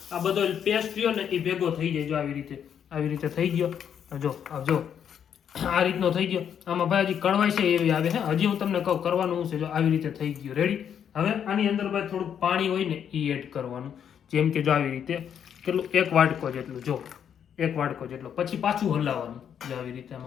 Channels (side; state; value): right; quieter; 8.5 dB